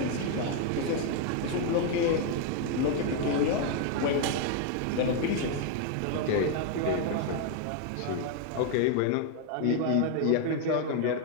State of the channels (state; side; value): different; both; correlation 0.01